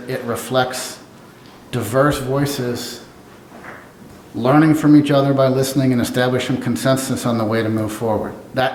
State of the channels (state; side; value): identical; both; correlation 1.00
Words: it reflects diverse voices learning from each other by listening and establishing consensus on the way to move forward.